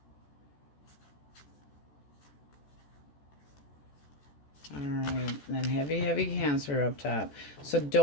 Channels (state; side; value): late; right; 14 ms